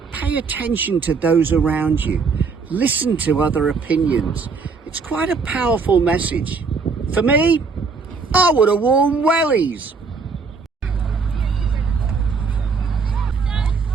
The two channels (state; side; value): quieter; left; 4.9 dB